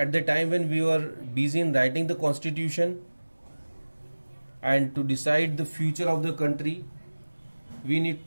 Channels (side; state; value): both; inverted; correlation -1.00